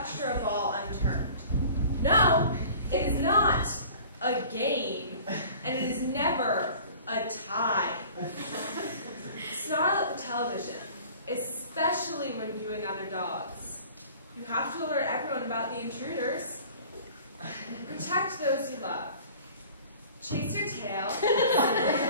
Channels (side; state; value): both; inverted; correlation -0.46